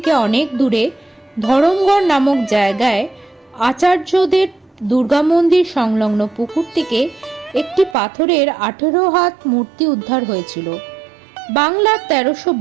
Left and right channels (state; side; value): drops out; left; at 8.0 s